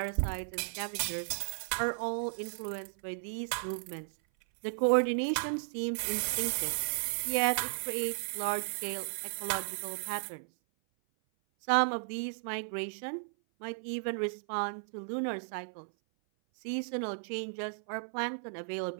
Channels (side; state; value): left; silent; 55 dB below the other